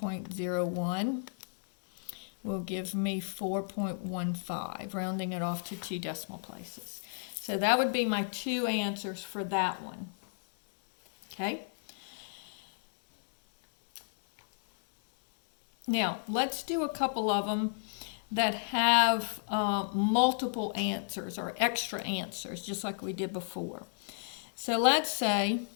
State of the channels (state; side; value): silent; right; digital silence